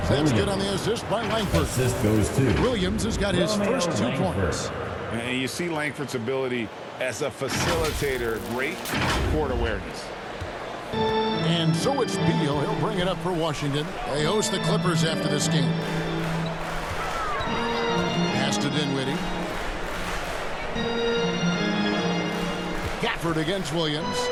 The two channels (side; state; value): both; identical; correlation 1.00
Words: That's good on the assist by Langford. Assist goes to Williams has got his first 2 points. And you see Langford's ability as a facilitator. Great court awareness. And so it's Beal. He'll bring it up for Washington. They host the Clippers after this game. Pass to Dinwiddie. Gafford against Williams.